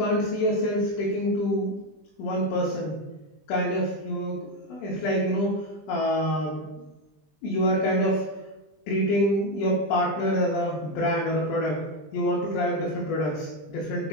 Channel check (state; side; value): late; right; 20 ms